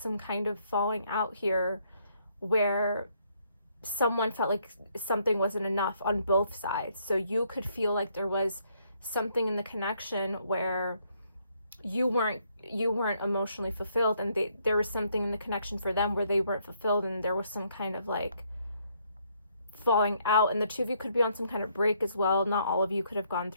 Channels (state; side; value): inverted; both; correlation -0.70